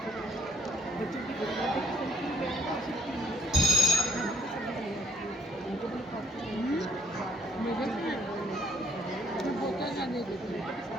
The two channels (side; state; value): both; normal; correlation 0.64